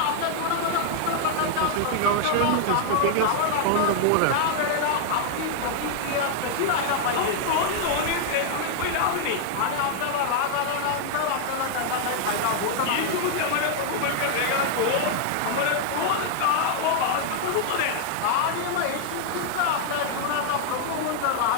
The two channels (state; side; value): different; both; correlation 0.00